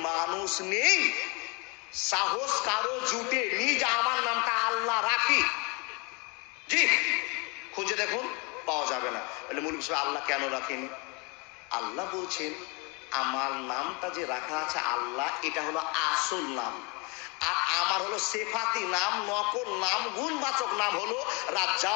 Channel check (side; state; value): right; quieter; 29.3 dB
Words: মানুষ নেই, সাহস কারো জুটে নিজ আমার নামটা আল্লাহ রাখি। জি, খুঁজে দেখুন, পাওয়া যাবে না। বলে মৌলভী সাহেব, আল্লাহ কেন রাখেনি? আল্লাহ বলছেন, আমার নামটা যে রাখা আছে আল্লাহ, এটা হলো আসল নাম, আর আমার হলো সেফাতি নাম, নকল নাম, গুণবাচক নাম হলো